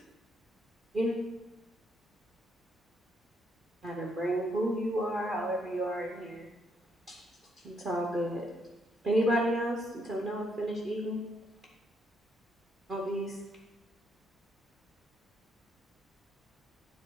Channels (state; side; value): normal; both; correlation 0.74